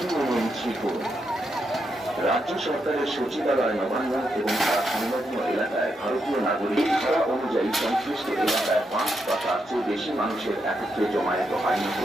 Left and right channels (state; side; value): normal; both; correlation 0.82